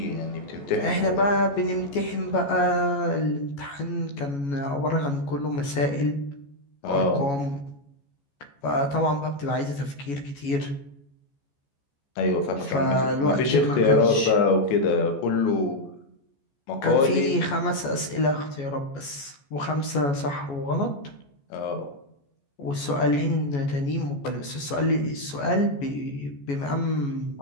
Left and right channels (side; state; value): right; late; 14 ms